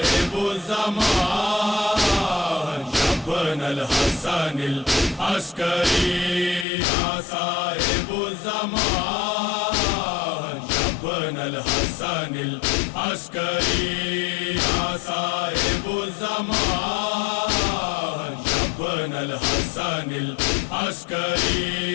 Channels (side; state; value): right; drops out; at 6.7 s